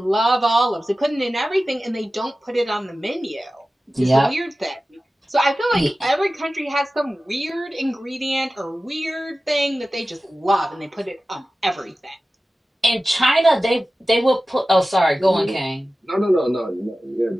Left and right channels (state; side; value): normal; both; correlation 0.95